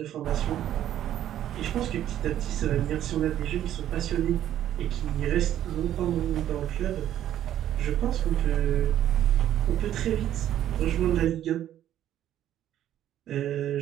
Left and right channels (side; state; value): left; quieter; 11.6 dB